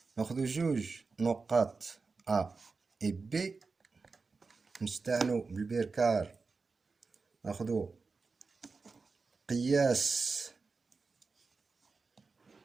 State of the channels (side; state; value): left; quieter; 4.3 dB